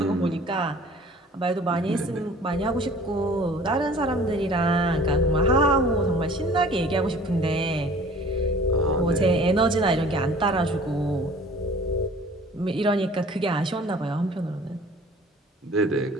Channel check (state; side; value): normal; both; correlation 0.49